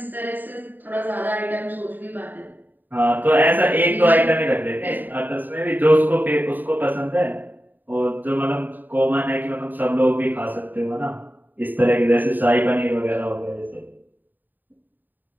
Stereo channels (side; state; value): left; late; 0.089 ms